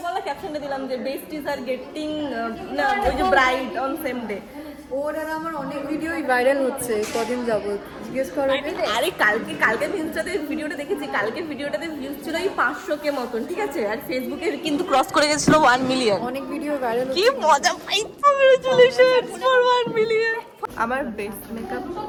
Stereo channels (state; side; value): identical; both; correlation 1.00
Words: বলা ক্যাপশনটা দিলাম, যে বেস্টিজ আর গেটিং না, ওই যে ব্রাইড অন সেম ডে। ওর আর আমার অনেক ভিডিওই ভাইরাল হচ্ছে কদিন যাবত। জিজ্ঞেস করো। আরে কালকে ইনস্টাতে ভিডিওটা দেখেছি, কালকে ভিডিওটাতে ভিউজ ছিল এই 500K মতন, ঠিক আছে, আর ফেসবুকে কিন্তু ক্রস করে গেছিল 1 মিলিয়ন। অনেক ভিডিও ভাইরাল কি মজা পাই। Congratulations for 1 million. আমার বেস মেকআপ